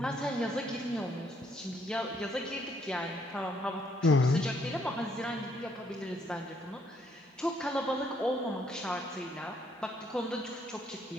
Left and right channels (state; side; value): normal; both; correlation 0.69